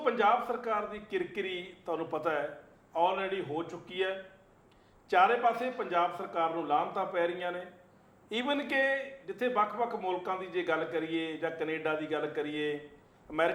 ਸਰਕਾਰ ਦੀ ਕਿਰਕਿਰੀ ਤੁਹਾਨੂੰ ਪਤਾ ਹੈ ਆਲਰੇਡੀ ਹੋ ਚੁੱਕੀ ਹੈ। ਚਾਰੇ ਪਾਸੇ ਪੰਜਾਬ ਸਰਕਾਰ ਨੂੰ ਲਾਹਨਤਾਂ ਪੈ ਰਹੀਆਂ ਨੇ। ਈਵਨ ਕਿ ਜਿੱਥੇ ਵੱਖ-ਵੱਖ ਮੁਲਕਾਂ ਦੀ ਜੇ ਗੱਲ ਕਰੀਏ ਜਾਂ ਕੈਨੇਡਾ ਦੀ ਗੱਲ ਕਰੀਏ,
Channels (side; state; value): both; identical; correlation 1.00